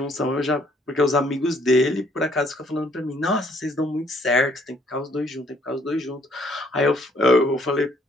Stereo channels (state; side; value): normal; both; correlation 0.64